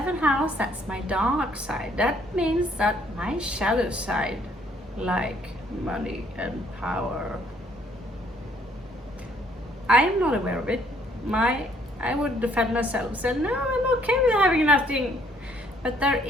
house, that's my dark side. That means that my shadow side, like money and power, I am not aware of it. I would defend myself, say no, I'm okay with having nothing. But there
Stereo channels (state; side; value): normal; both; correlation 0.64